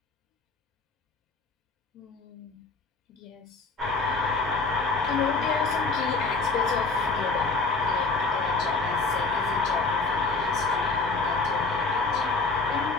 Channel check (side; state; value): right; quieter; 3.8 dB